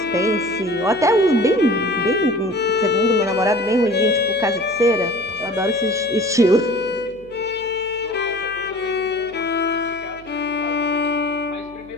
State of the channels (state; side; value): noise; left; hum, 26 dB below the sound